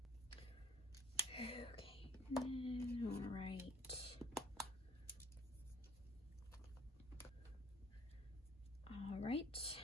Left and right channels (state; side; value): normal; both; correlation 0.54